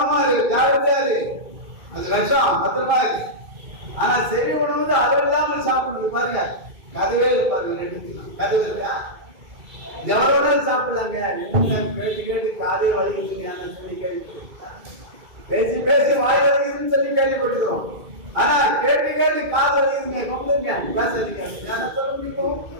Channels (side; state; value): left; late; 2.2 ms